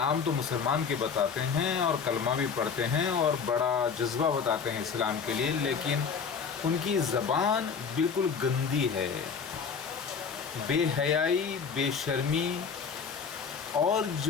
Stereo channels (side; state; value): right; quieter; 6.1 dB